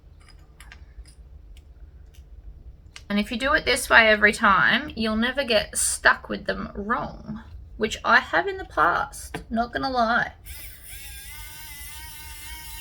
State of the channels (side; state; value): both; identical; correlation 1.00